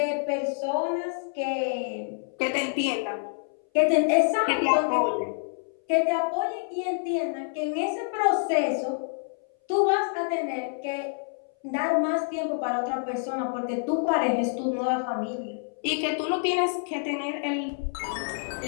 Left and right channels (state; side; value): silent; right; 58 dB below the other